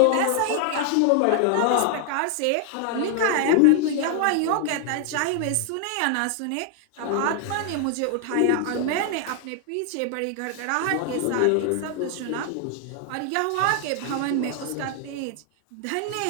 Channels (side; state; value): both; different; correlation 0.00